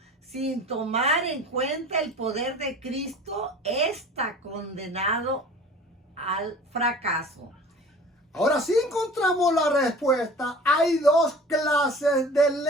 sin tomar en cuenta el poder de Cristo, está condenado al fracaso. Ahora sí encontramos la respuesta. Hay dos clases de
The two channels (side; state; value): both; normal; correlation 0.43